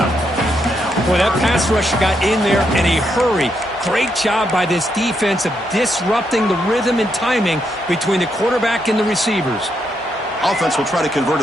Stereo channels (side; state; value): both; normal; correlation 0.79